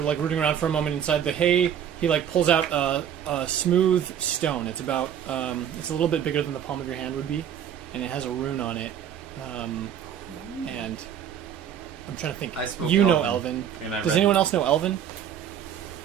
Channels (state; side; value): quieter; left; 9.2 dB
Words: rooting around for a moment inside the hay, he like pulls out a smooth stone. It's about it's a little bit bigger than the palm of your hand would be, and it has a rune on it. And I'm trying to think. I spoke You know Elven, Elven. and I Does read. anyone else know Elven?